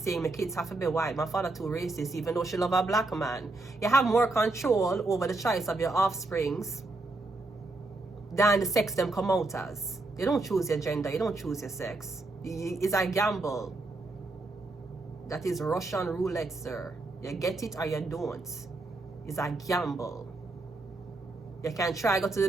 my kids have to be white. My father too racist, even though she love a black man. You have more control over the choice of your offsprings than the sex them come out as. You don't choose your gender. You don't choose your sex. It's a gamble. That is Russian roulette, sir. You get it or you don't. It's a gamble. You can try go to the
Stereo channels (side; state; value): left; quieter; 3.1 dB